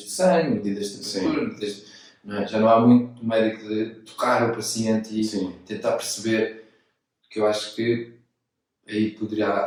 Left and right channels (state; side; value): identical; both; correlation 1.00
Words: sangue, medidas de temperatura, não é? Já não há muito do médico de tocar o paciente e tentar perceber, que eu acho que aí poderia